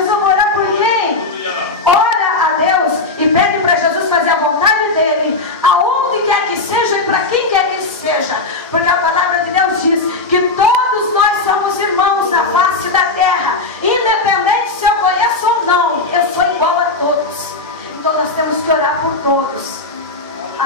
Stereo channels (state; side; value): quieter; right; 3.4 dB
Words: vai orar por quem? Ora a Deus e pede para Jesus fazer a vontade dele, aonde quer que seja e para quem quer que seja, porque a palavra de Deus diz que todos nós somos irmãos na face da terra.